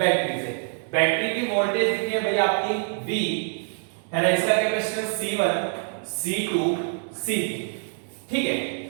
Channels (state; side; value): silent; left; digital silence